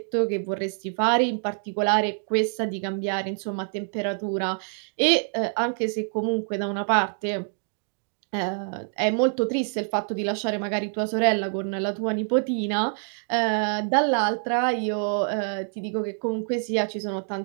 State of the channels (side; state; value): left; silent; 56 dB below the other